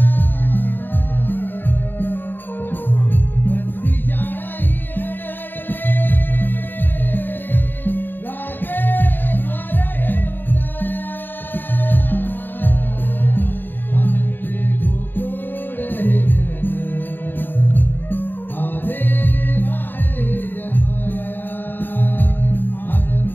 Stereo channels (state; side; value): late; right; 0.093 ms